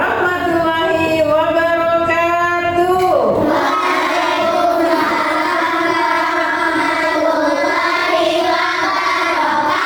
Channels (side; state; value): both; identical; correlation 1.00